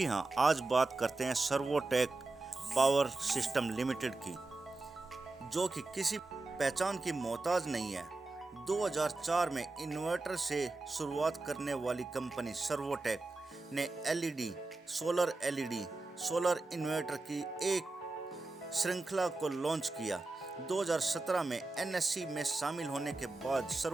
हां, आज बात करते हैं सर्वोटेक पावर सिस्टम लिमिटेड की, जो कि किसी पहचान की मोहताज नहीं है। 2004 में इन्वर्टर से शुरुआत करने वाली कंपनी सर्वोटेक ने सोलर इन्वर्टर की एक श्रृंखला को लॉन्च किया। 2017 में NSE में शामिल होने के बाद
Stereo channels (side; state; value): left; quieter; 3.3 dB